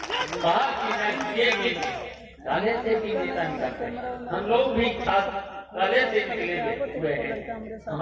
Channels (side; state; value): both; identical; correlation 1.00